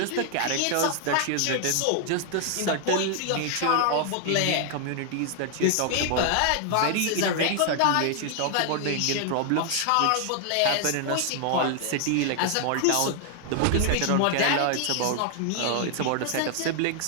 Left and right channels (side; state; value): both; different; correlation 0.00